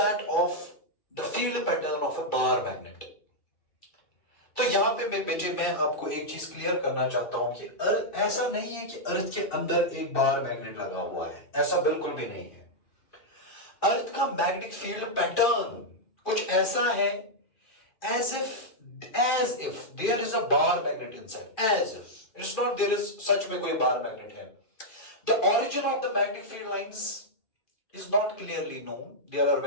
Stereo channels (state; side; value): late; right; 2.4 ms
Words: of the field pattern of a bar magnet. तो यहां पे मैं आपको एक चीज क्लियर करना चाहता हूं कि ऐसा नहीं है कि अर्थ के अंदर एक बार मैग्नेट लगा हुआ है, ऐसा बिल्कुल भी नहीं है। अर्थ का मैग्नेटिक फील्ड पैटर्न कुछ ऐसा है, as if there is a bar magnet inside, as if it's not there is such में कोई बार मैग्नेट है। The origin of the magnetic field lines is not clearly known. There are